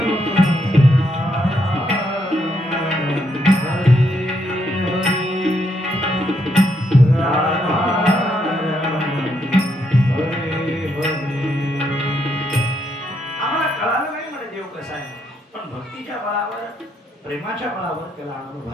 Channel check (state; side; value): normal; both; correlation 0.77